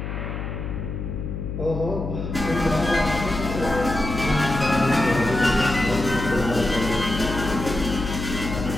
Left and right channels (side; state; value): left; noise; hum, 5 dB below the sound